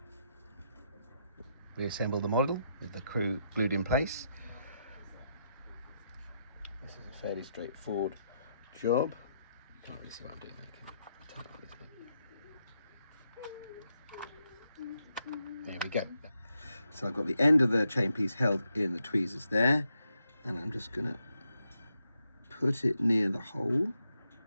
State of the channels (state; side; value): inverted; both; correlation -0.81